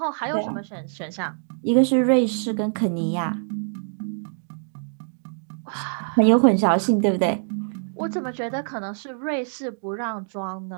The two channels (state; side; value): silent; left; digital silence